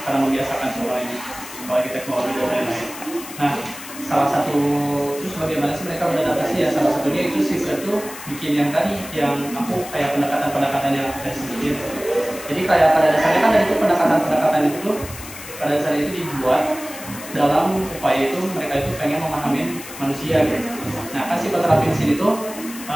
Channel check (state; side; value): noise; left; hiss, 13 dB below the sound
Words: karena membiasakan semuanya apalagi teknologi dan lain-lain. Nah, salah satu terus bagaimana sih mereka beradaptasi ya, salah satunya itu si Fred tuh bikin yang tadi yang aku kayak pendekatan yang aku tadi sebutin. Jadi kayak pada dasarnya kan dari itu pendekatan itu tuh pada dasarnya itu dibuat dalam upaya itu mereka itu pengen memahami manusia gitu. Nah kan psikoterapi di sini tuh